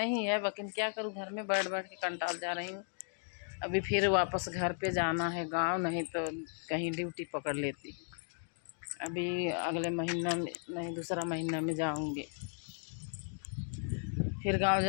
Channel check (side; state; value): right; silent; 54 dB below the other